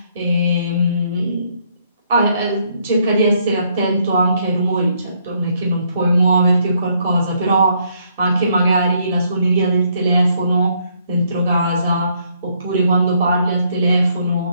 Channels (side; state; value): both; inverted; correlation -0.70